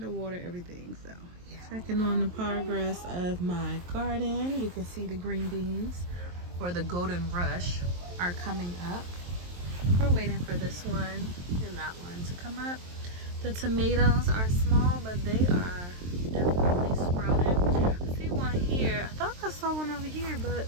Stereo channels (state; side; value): late; left; 23 ms